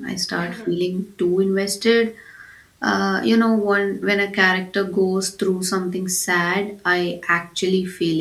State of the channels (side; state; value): both; identical; correlation 1.00